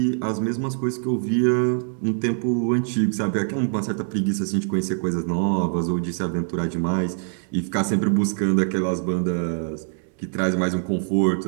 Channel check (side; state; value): left; silent; 63 dB below the other